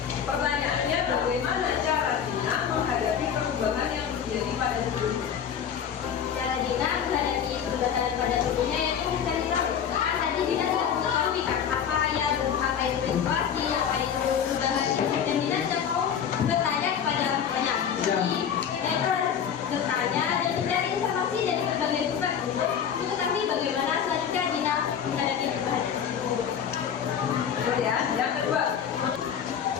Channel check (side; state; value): right; quieter; 8.1 dB